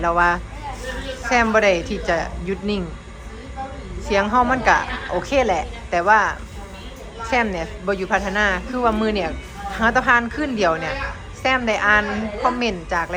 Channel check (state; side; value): identical; both; correlation 1.00